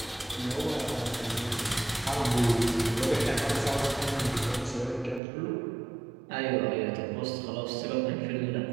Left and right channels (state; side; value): drops out; left; at 5.2 s